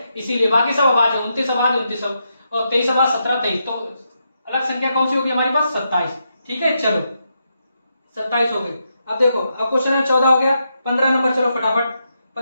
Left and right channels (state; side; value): inverted; both; correlation -0.83